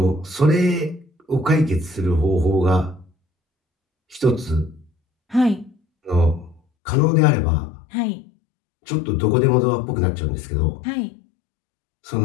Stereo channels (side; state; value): right; drops out; at 6.6 s